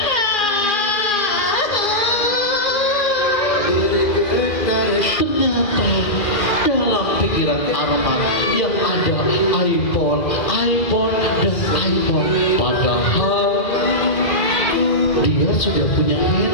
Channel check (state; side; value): late; right; 2.4 ms